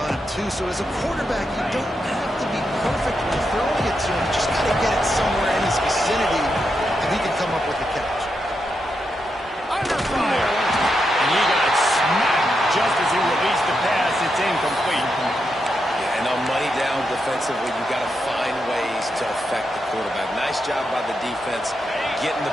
him, too? So as a quarterback, you don't have to be perfect when throwing it to him. You just got to get it somewhere in his vicinity, and he can come up with the catch. Under fire. And he got smacked just as he released the pass. It's incomplete. Yeah, and on money down defensively, you got to find ways to affect the quarterback. Nice job by the defense, getting the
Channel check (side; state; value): both; normal; correlation 0.84